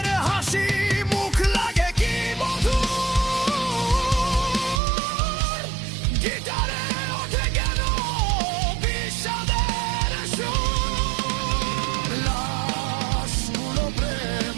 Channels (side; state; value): left; drops out; at 4.8 s